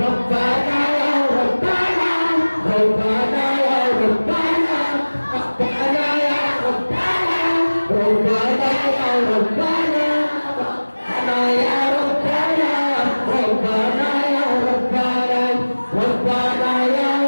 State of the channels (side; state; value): both; inverted; correlation -1.00